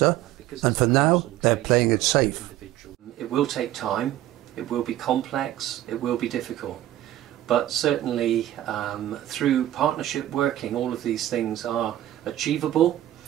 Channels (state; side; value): quieter; left; 13.7 dB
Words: and for now they're playing it safe. It will take time, it will be complex, it will be difficult. But certainly through partnership working, all of these things are achievable,